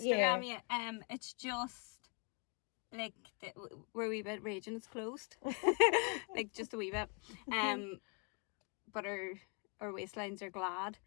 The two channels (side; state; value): right; quieter; 34.9 dB